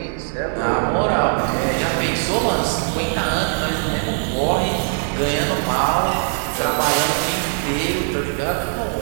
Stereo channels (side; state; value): left; silent; digital silence